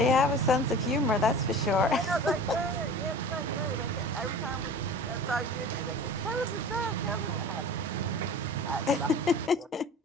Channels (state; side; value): normal; both; correlation 0.38